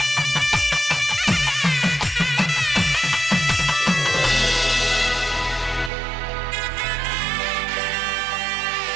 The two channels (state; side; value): drops out; left; at 5.9 s